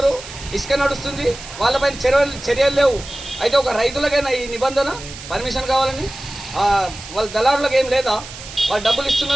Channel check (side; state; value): right; noise; hiss, 14 dB below the sound